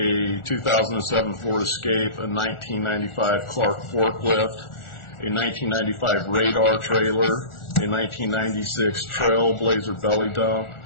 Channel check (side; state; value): right; late; 1.4 ms